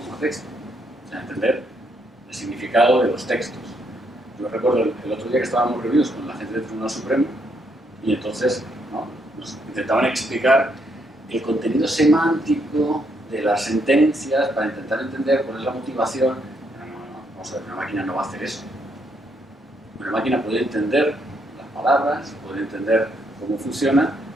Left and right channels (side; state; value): both; normal; correlation 0.75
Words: a texto, o sea, entender el significado de los textos. Yo recuerdo el otro día que estábamos reunidos con la gente del Tribunal Supremo y entonces, ¿no?, nos intentaban explicar el contenido semántico de las sentencias para intentar entender cuál es la motivación. Vamos a ver, una máquina no va a hacer eso. Una máquina puede entender las palabras, puede entender cómo funciona,